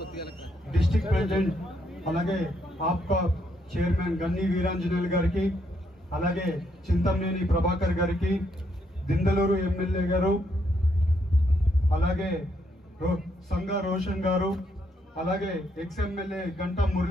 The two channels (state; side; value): normal; both; correlation 0.75